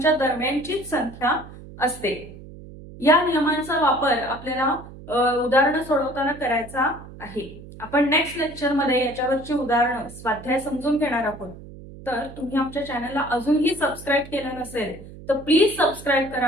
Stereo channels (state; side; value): noise; right; hum, 16 dB below the sound